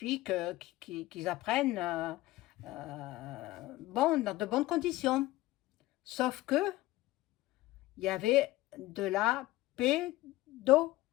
qu'ils apprennent dans de bonnes conditions. Sauf que il y avait de la pédo.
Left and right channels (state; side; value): quieter; right; 17.5 dB